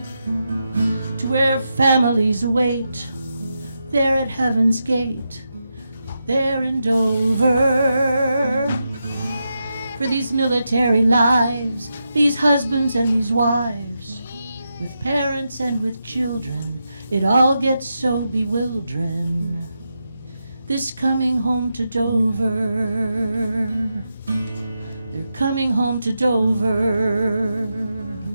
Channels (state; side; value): inverted; both; correlation -0.86